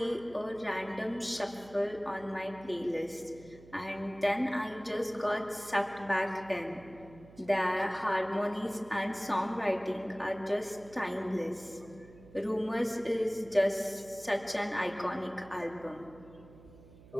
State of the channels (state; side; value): noise; right; hum, 21 dB below the sound